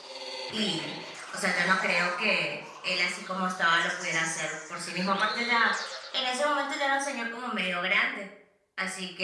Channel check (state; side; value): identical; both; correlation 1.00